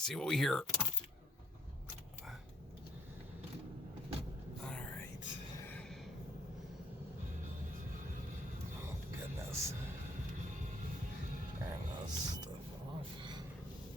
see what we hear. Alright. Oh, goodness. Turn this stuff off.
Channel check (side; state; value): both; normal; correlation 0.62